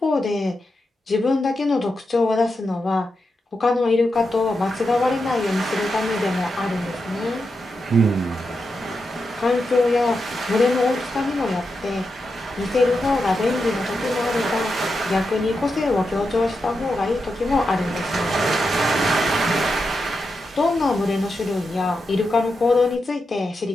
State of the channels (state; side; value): normal; both; correlation 0.87